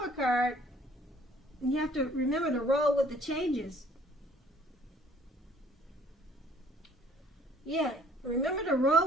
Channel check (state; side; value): normal; both; correlation 0.58